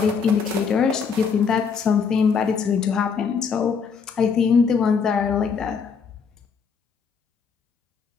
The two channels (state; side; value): quieter; right; 6.0 dB